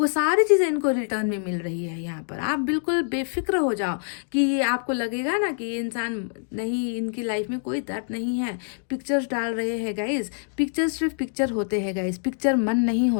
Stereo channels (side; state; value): right; silent; digital silence